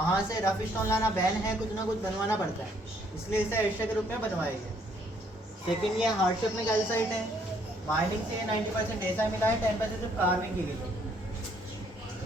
से रफ स्टोन लाना बैन है, कुछ ना कुछ बनवाना पड़ता है, इसलिए इसे एस्ट्रे के रूप में बनवाया गया। सेकेंड ये हार्ट शेप में कैल्साइट है, माइनिंग से 90% ऐसा मिला है, 10% सिर्फ कार्विंग की गई।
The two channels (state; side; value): normal; both; correlation 0.66